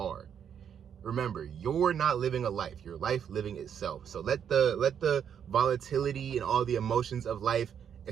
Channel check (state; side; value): quieter; left; 8.3 dB